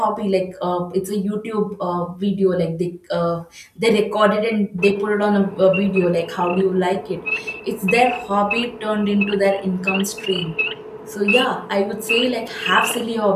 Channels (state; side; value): identical; both; correlation 1.00